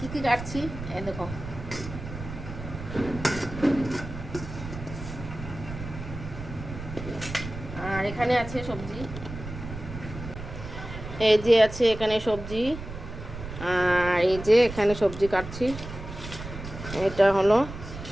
কী কাটছি এই দেখো। আর এখানে আছে সবজি, এই যে আছে এখানে সবজি। আর এই যে এখানে সবজি কাটছি। এটা হলো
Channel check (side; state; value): right; noise; rumble, 10 dB below the sound